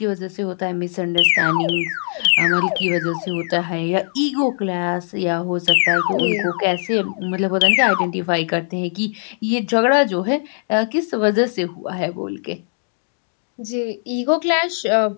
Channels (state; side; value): silent; right; digital silence